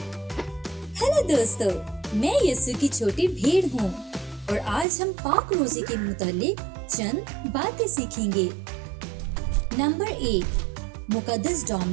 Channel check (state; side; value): drops out; left; at 4.9 s